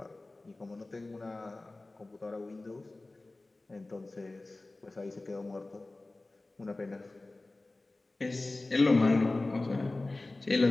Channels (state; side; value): quieter; right; 3.0 dB